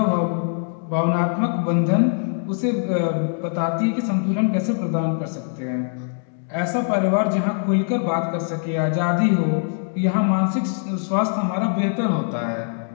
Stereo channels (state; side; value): silent; right; 64 dB below the other